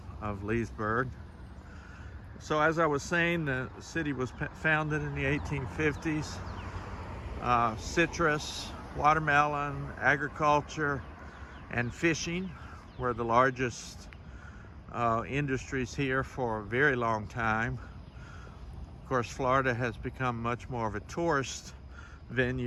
Leesburg. So as I was saying, the city was founded in the 1850s. Citrus, watermelon, agriculture, and fishing were the largest industries here for a very long time. Of course, Florida has become much more of a tourist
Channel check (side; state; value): both; identical; correlation 1.00